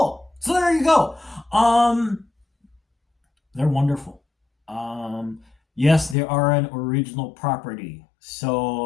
So there you go. They're wonderful. Yes, they are an original property,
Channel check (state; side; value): drops out; right; at 6.2 s